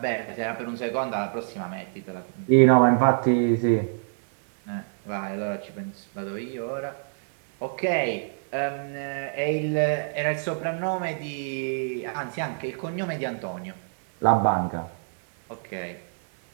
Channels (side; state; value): left; silent; 61 dB below the other